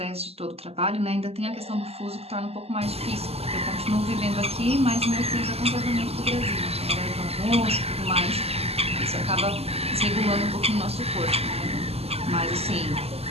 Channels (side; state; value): left; late; 0.29 ms